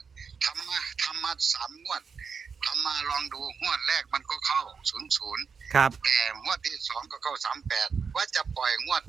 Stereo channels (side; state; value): left; quieter; 5.8 dB